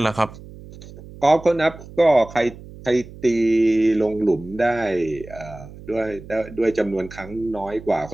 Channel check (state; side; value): noise; right; hum, 17 dB below the sound